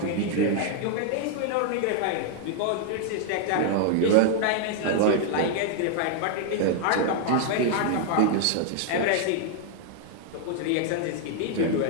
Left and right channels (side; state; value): both; different; correlation 0.00